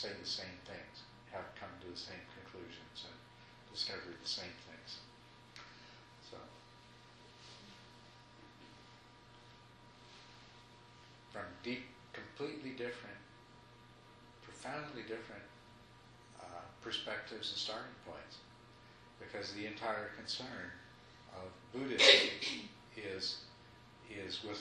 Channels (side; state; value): both; identical; correlation 1.00